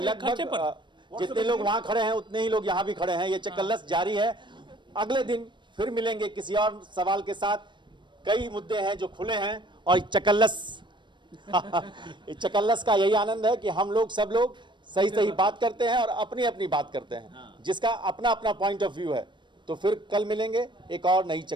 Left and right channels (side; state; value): left; late; 0.22 ms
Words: लगभग जितने लोग वहां खड़े हैं उतने ही लोग यहाँ भी खड़े हैं। ये चकल्लस जारी है। अगले दिन फिर मिलेंगे किसी और सवाल के साथ। कई मुद्दे हैं जो खुले हैं और चकल्लस चकल्लस का यही आनंद है कि हम लोग सब लोग सही बात करते हैं और अपनी अपनी बात करते हैं, जिसका अपना अपना पॉइंट ऑफ व्यू है। तो फिर कल मिलेंगे एक और नई